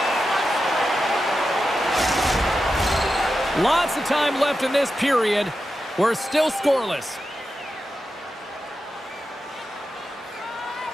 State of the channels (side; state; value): both; normal; correlation 0.90